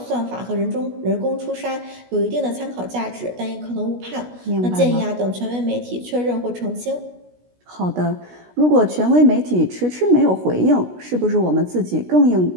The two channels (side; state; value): left; late; 16 ms